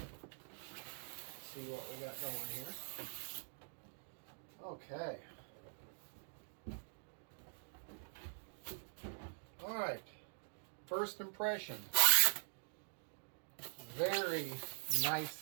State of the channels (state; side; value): silent; left; digital silence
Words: see what we got going here. Okay. All right. First impression. Very